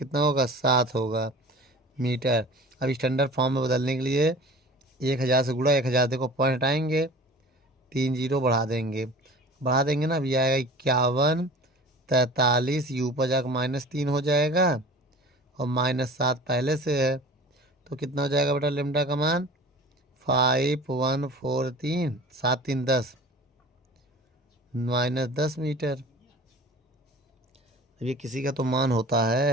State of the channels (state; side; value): normal; both; correlation 0.41